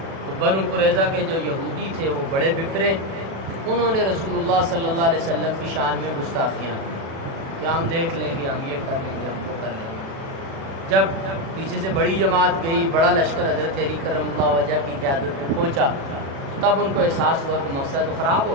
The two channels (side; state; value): left; late; 36 ms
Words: تو بنو قریظہ کے جو یہودی تھے وہ بڑے بپرے، انہوں نے رسول اللہ صلی اللہ علیہ وسلم کی شان میں گستاخیاں کی کہ ہم دیکھ لیں گے، ہم یہ کر لیں گے، ہم وہ کر لیں گے۔ جب پیچھے سے بڑی جماعت گئی، بڑا لشکر حضرت علی کرم اللہ وجہ کی قیادت میں پہنچا، تب ان کو احساس ہوا کہ موقع تو خراب